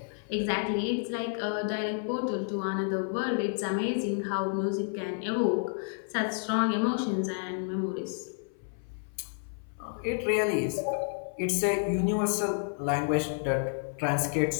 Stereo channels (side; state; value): right; silent; 56 dB below the other